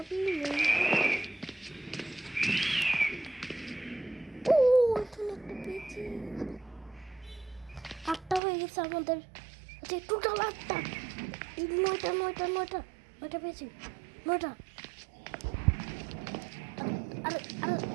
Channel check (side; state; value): left; drops out; at 8.4 s